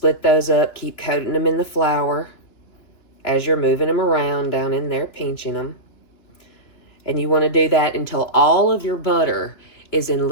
those up, keep coating them in the flour as you're moving them around down in there, pinching them. And you want to do that until all of your butter is in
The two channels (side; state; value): right; late; 2.9 ms